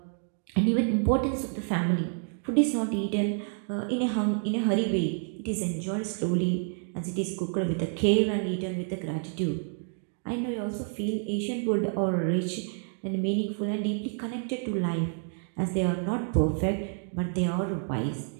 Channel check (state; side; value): silent; left; 59 dB below the other